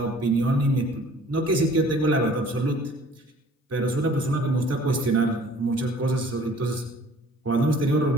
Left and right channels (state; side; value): normal; both; correlation 0.52